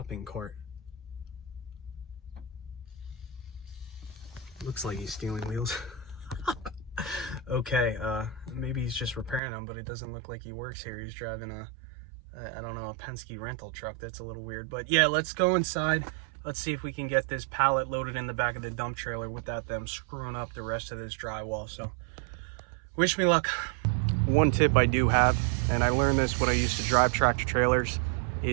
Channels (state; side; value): drops out; left; at 9.4 s